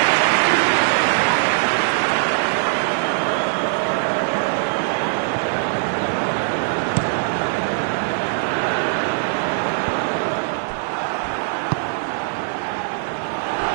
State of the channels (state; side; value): silent; left; 65 dB below the other